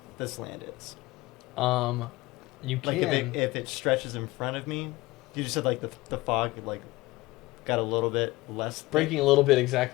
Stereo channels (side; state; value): right; quieter; 20.1 dB